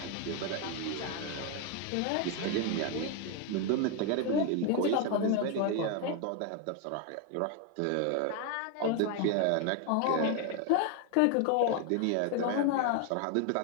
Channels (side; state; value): both; different; correlation 0.01